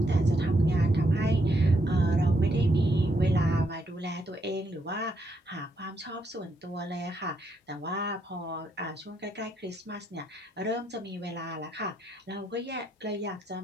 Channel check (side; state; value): both; normal; correlation 0.77